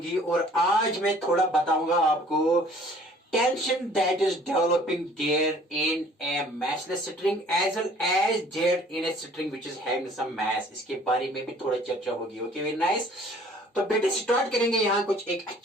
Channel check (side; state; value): both; normal; correlation 0.54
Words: और आज मैं थोड़ा बताऊंगा आपको tension that is developing there in a massless string as well as there in a string which is having some mass. इसके बारे में भी थोड़ा चर्चा होगी. Okay, very nice. तो बेटे स्टार्ट करेंगे यहाँ कुछ एक